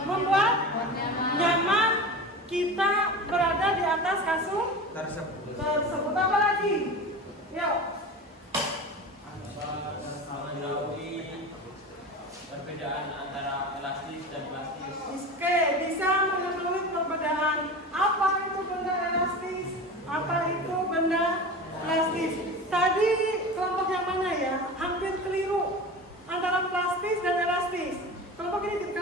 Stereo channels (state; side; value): normal; both; correlation 0.30